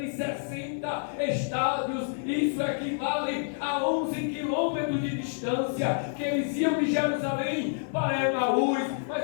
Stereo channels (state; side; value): silent; right; 59 dB below the other